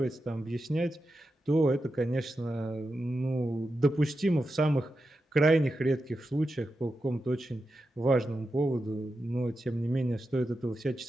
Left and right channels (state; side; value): normal; both; correlation 0.89